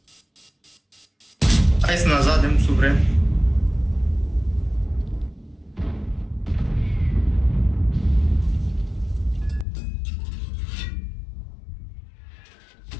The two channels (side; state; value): right; drops out; at 9.7 s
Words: Hai să ne zadem sub vrem.